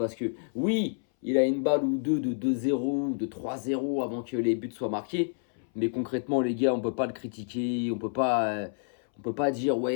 que oui, il a une balle ou deux de 2-0 ou de 3-0 avant que les buts soient marqués. Mais concrètement, les gars, on peut pas le critiquer. On peut pas dire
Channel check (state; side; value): silent; right; 59 dB below the other